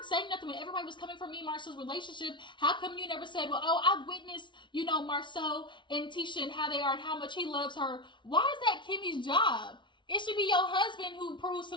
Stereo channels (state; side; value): late; right; 0.24 ms